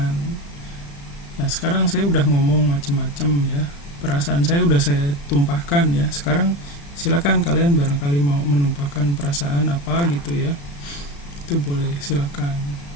Nah sekarang saya udah ngomong macem-macem ya, perasaan saya udah saya tumpahkan ya. Sekarang silakan kalian barangkali mau menumpahkan perasaan apa gitu ya, itu boleh, silakan,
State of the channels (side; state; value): right; late; 35 ms